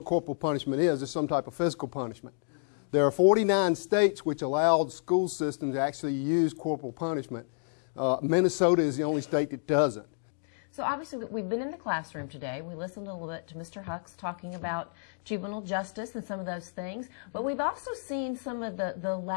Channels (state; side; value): silent; right; digital silence